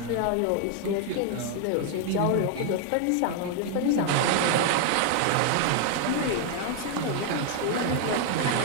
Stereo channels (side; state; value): both; different; correlation 0.00